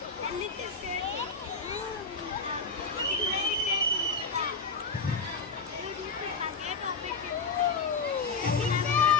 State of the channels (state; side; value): quieter; right; 4.4 dB